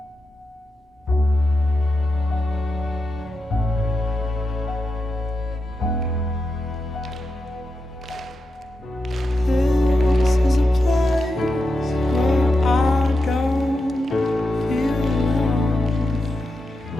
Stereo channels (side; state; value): both; normal; correlation 0.88